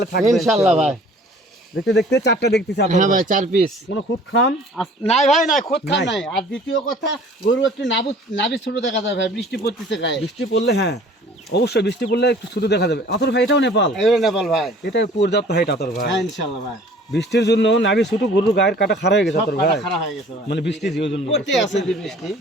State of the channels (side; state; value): both; normal; correlation 0.51